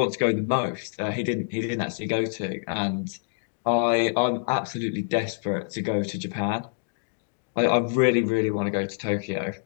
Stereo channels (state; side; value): silent; right; digital silence